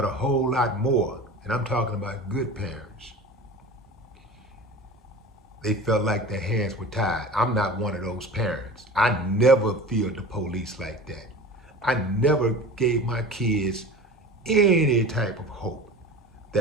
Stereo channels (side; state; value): both; normal; correlation 0.36